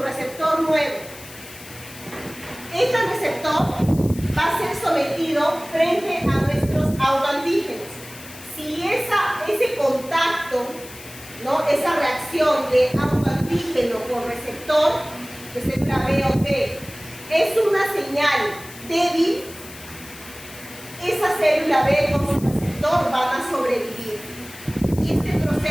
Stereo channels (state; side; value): noise; left; hiss, 17 dB below the sound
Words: receptor nuevo. Este receptor va a ser sometido frente a nuestros autoantígenos. Si ese contacto, ¿no? Esa reacción de autoantígeno con receptor de célula B o T es una señal débil, esa célula B con su receptor van a sobrevivir. Y este